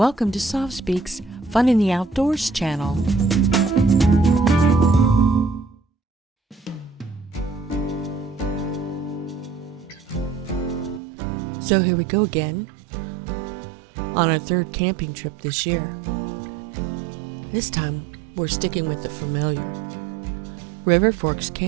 to Soft Speak's Fun in the Outdoors channel. So here we go again on our third camping trip this year. This time we're sticking with the familiar Forks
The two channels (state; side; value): drops out; left; at 11.0 s